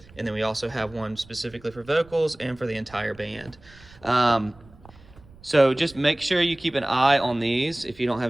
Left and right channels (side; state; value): right; noise; rumble, 24 dB below the sound